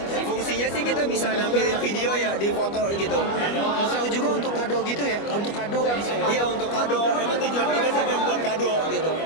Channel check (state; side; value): late; right; 25 ms